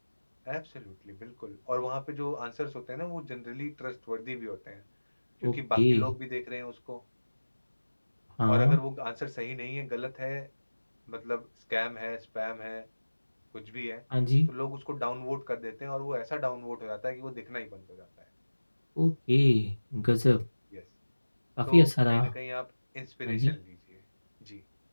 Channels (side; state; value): both; inverted; correlation -1.00